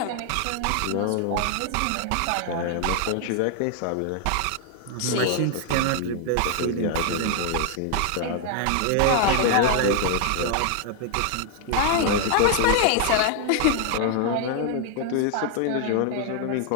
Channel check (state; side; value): different; both; correlation 0.00